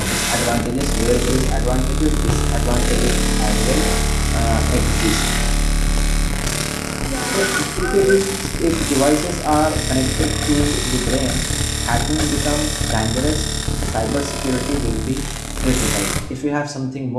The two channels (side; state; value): both; identical; correlation 1.00